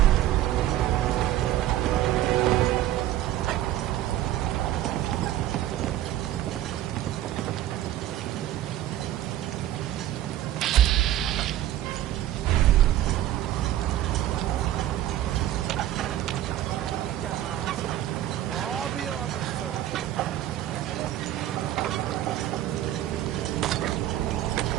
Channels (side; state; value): left; quieter; 13.2 dB